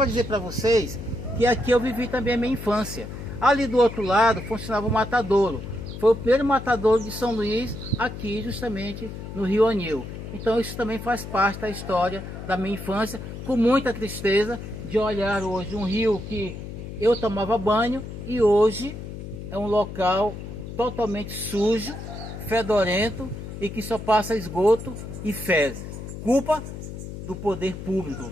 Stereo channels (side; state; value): left; noise; hum, 9 dB below the sound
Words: dizer para vocês que aqui eu vivi também a minha infância. Ali do outro lado funcionava o matadouro. Foi o primeiro matadouro de São Luís, aqui justamente no Rio Anil. Então isso também faz parte da história da minha infância, com muita tristeza de olhar hoje um rio que eu tomava banho e hoje é um local totalmente sujo, fedorento e que só passa esgoto e fezes. Culpa do poder público